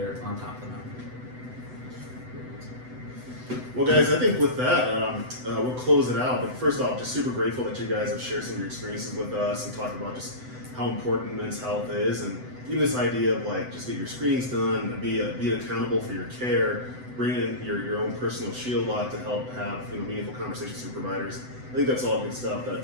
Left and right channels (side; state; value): left; late; 7.9 ms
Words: on top of the mountain. Well, guys, I think with that, we'll close it out. But first off, just super grateful that you guys have shared some of your experiences with us and talked about just how important men's health is, and even this idea of like just get your screenings done, be accountable for your care, bring in your own personal shield lock to help have meaningful conversations with your providers. I think that's all good stuff